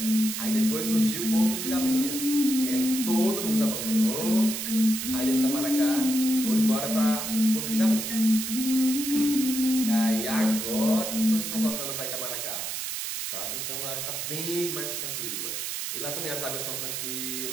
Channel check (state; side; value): noise; right; hiss, 4 dB below the sound